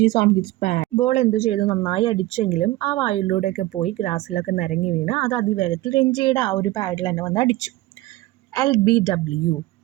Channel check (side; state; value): left; quieter; 17.8 dB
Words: on his pad. Ball എന്ത് ചെയ്തു? നന്നായി അടിച്ചെങ്കിലും ആ വായുവിലൂടെയൊക്കെ പോയി ഗ്രാസിലൊക്കെ നിരങ്ങി വീണ് അത് അതിവേഗത്തിൽ രഞ്ജിയുടെ ആ ഒരു പാഡിൽ തന്നെ വന്ന് അടിച്ചു. LBW